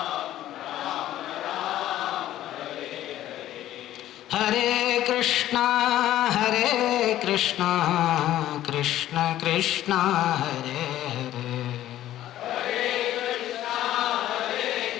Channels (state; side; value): quieter; right; 13.3 dB